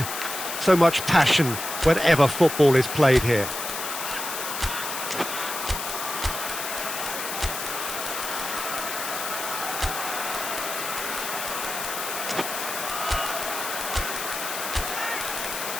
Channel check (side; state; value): left; noise; hiss, 5 dB below the sound